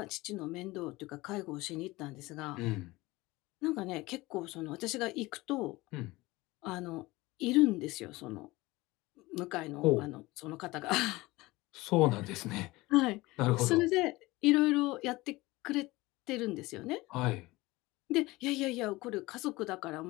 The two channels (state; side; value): quieter; right; 20.6 dB